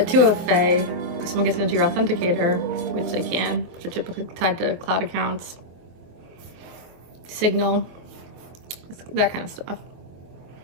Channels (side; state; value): left; late; 24 ms